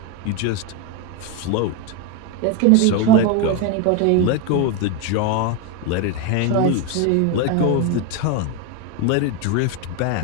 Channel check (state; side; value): different; both; correlation 0.02